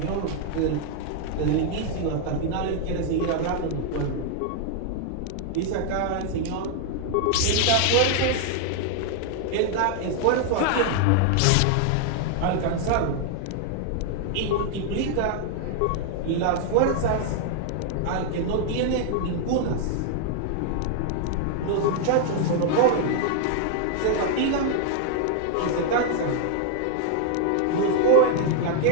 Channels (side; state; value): both; different; correlation 0.00